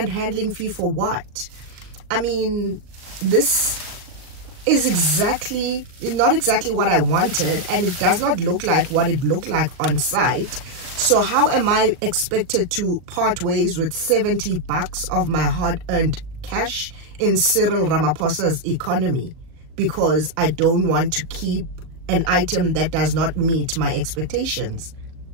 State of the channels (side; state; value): left; late; 38 ms